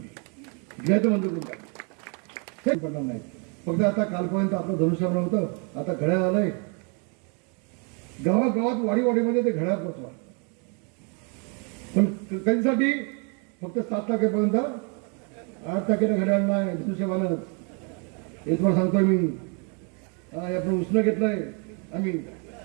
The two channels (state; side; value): quieter; left; 36.9 dB